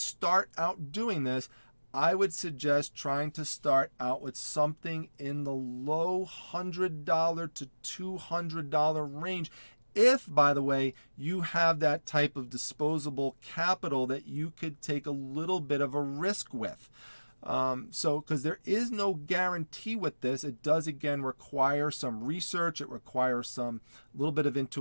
out doing this, I would suggest trying to start out with something in the low $100 to $200 range. If, by the way, you have that type of disposable capital that you could take a little bit of a risk with. Because there is no guarantee with this. It does, again, require some research. It requires some little bit of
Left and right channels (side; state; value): both; inverted; correlation -1.00